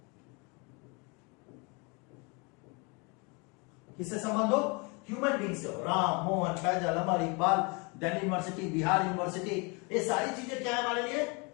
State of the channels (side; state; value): right; quieter; 30.7 dB